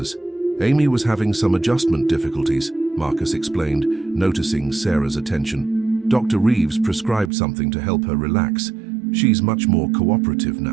Amy was having some adjustment difficulties, Marcus explained, noticing Sarah's attention. Dr. Reeves prescribed something to help her relax. She's much more cooperative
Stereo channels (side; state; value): left; drops out; at 7.3 s